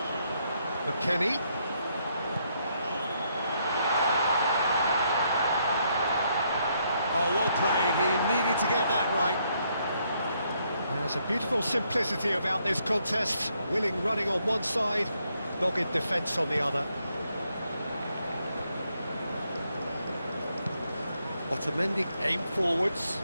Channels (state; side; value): inverted; both; correlation -0.74